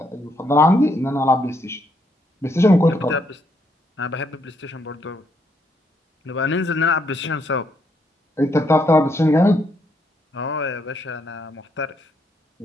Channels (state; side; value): normal; both; correlation 0.74